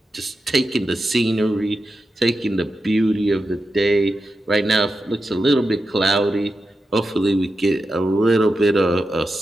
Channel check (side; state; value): both; normal; correlation 0.90